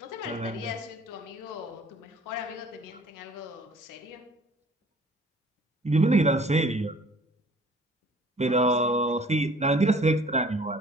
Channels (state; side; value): normal; both; correlation 0.52